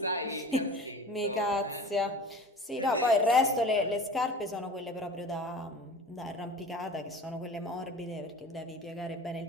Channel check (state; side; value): normal; both; correlation 0.38